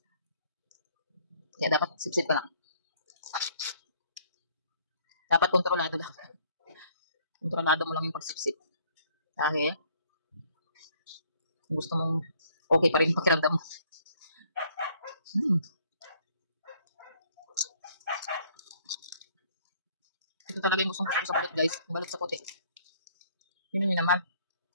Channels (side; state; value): both; inverted; correlation -0.61